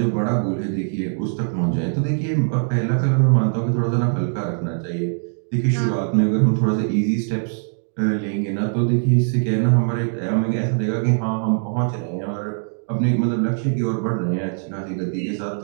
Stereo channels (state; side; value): silent; left; 64 dB below the other